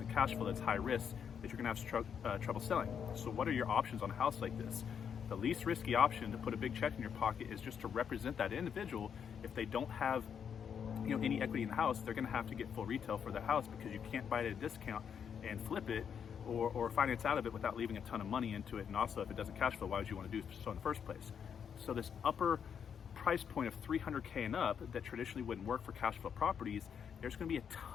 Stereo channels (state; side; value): quieter; right; 7.5 dB